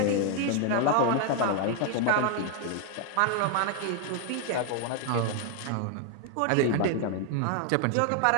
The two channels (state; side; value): different; both; correlation 0.00